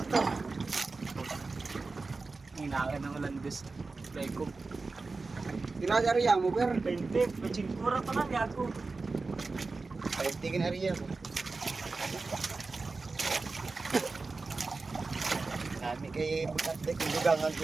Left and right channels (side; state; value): left; quieter; 3.9 dB